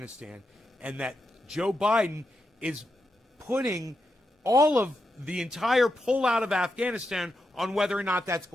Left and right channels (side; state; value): both; normal; correlation 0.86